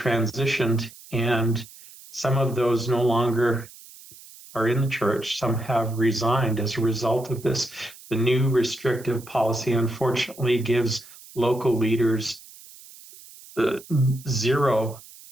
and some of those no longer are in the church. Some have resigned as a result of this. The new restrictive policy, unfortunately, gives local leaders the zero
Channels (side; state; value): right; noise; hiss, 20 dB below the sound